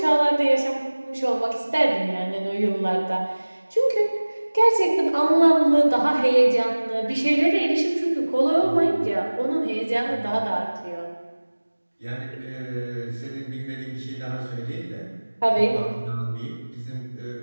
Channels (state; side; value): inverted; both; correlation -1.00